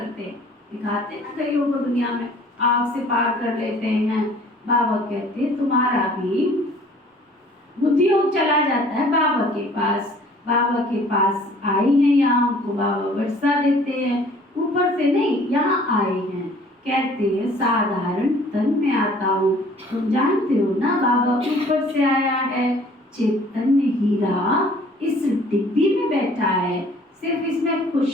दिखाते ना कईयों को दुनिया में आग से पार कर लेते हैं। बाबा कहते तुम्हारा भी बुद्धि योग चला जाता है बाबा के पास। बाबा के पास आई हैं, यहाँ हमको बाबा वर्षा देते हैं, ऊपर से नहीं, यहाँ आए हैं। कहते हैं साधारण तन में आता हूँ। तुम जानते हो ना बाबा ऊपर से आया है। चैतन्य हीरा इस डिब्बी में बैठा है। सिर्फ इसमें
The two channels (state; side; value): normal; both; correlation 0.53